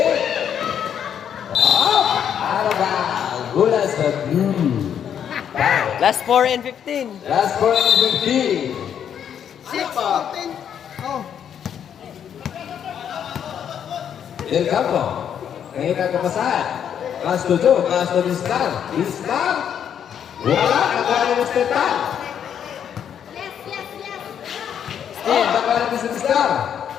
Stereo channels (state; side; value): quieter; right; 8.8 dB